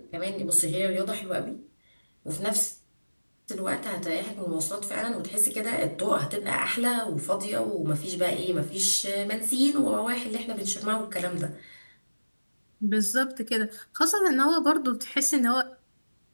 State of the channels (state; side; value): inverted; both; correlation -1.00